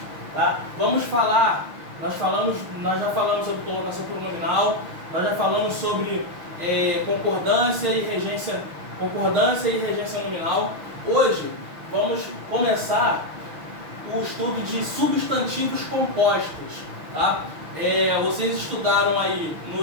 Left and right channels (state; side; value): late; left; 6.3 ms